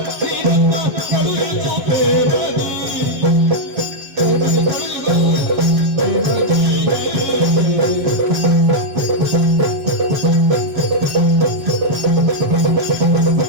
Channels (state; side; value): late; left; 7.3 ms